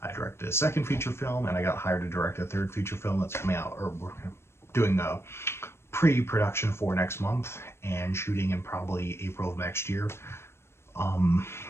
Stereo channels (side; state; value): right; late; 0.12 ms